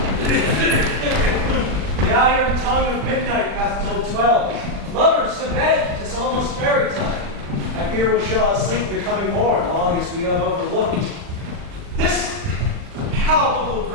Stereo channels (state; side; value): late; left; 40 ms